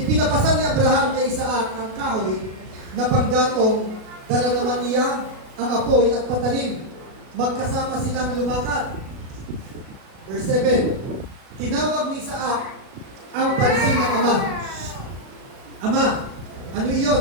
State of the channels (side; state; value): left; late; 37 ms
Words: ni Abraham kay Isaac ang kahoy na panggatong, dala naman niya ang apoy at patalim. Magkasama silang lumakad. Verse 7, tinawag ni Isaac ang pansin ng ama. Ama, ano